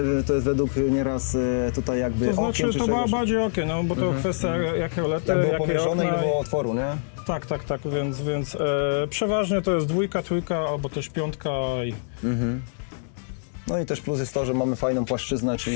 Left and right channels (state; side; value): silent; right; digital silence